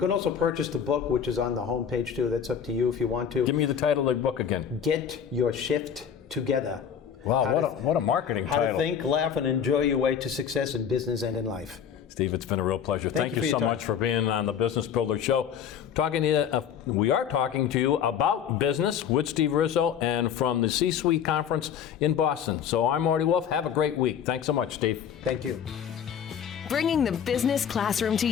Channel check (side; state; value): right; quieter; 8.1 dB